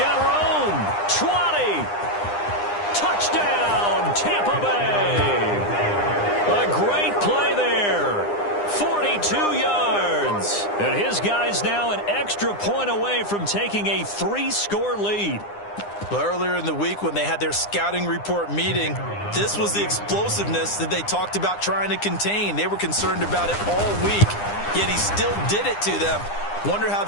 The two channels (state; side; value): late; right; 9.8 ms